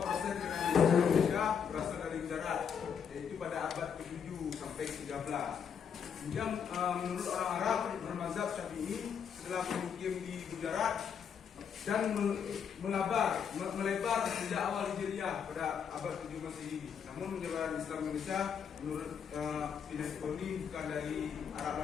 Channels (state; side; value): quieter; right; 7.3 dB